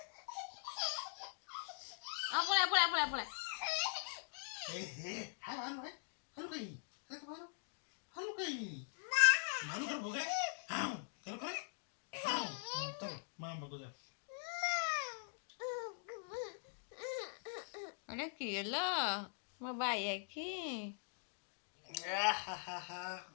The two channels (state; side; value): silent; right; digital silence